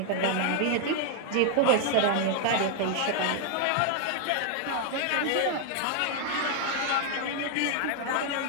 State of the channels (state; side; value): different; both; correlation 0.00